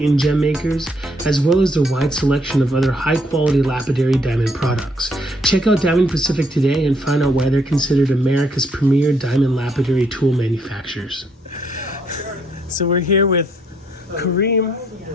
gem makers, as well as their wide selection of other high-quality lapidary diamond products. Check out Diamond Pacific today and find out why they're considered America's premier diamond lapidary tool manufacturers. So we're here with Kareem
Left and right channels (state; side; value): normal; both; correlation 0.70